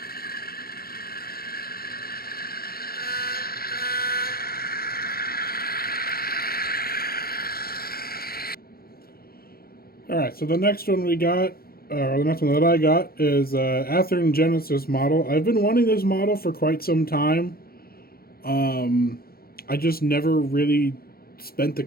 All right. So the next one we got, or the next one that I got, is Athearn Genesis model. I've been wanting this model for quite some time. I just never really spent the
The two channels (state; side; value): late; right; 0.44 ms